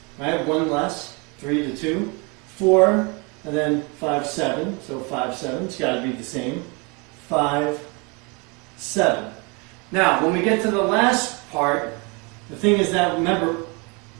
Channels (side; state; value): left; quieter; 30.2 dB